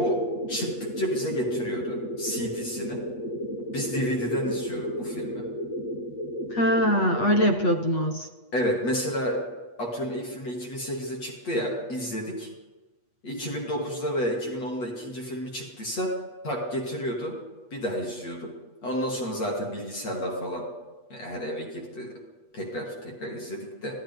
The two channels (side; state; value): right; late; 8.3 ms